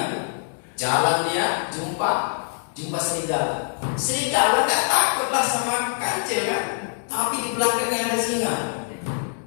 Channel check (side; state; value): right; silent; digital silence